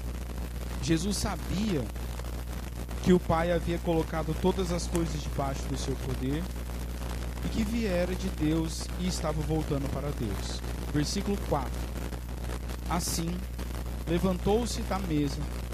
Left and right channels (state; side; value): identical; both; correlation 1.00